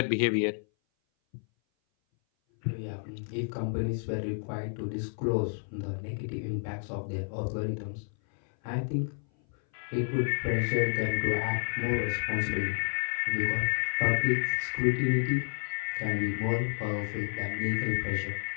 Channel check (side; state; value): right; silent; 57 dB below the other